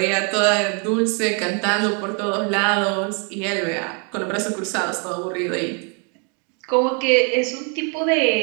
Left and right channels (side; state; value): left; quieter; 37.3 dB